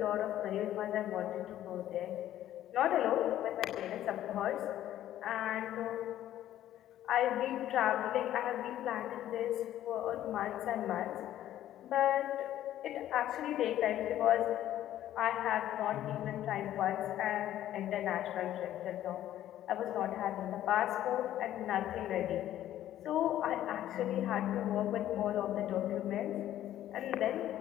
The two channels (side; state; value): right; quieter; 12.5 dB